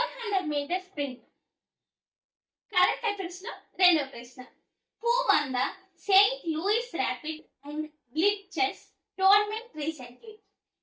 metre sprint. Current affairs లో రెండవ ప్రశ్న. Who won the Saint Louis rapid and blitz chess tournament recently?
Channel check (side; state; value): both; identical; correlation 1.00